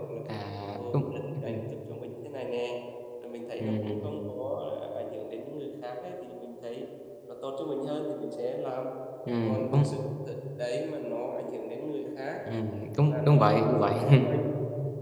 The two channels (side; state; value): both; identical; correlation 1.00